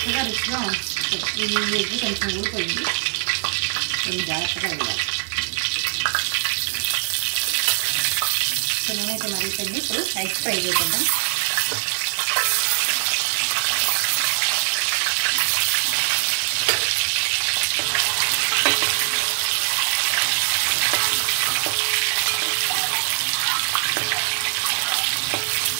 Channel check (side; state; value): left; silent; 61 dB below the other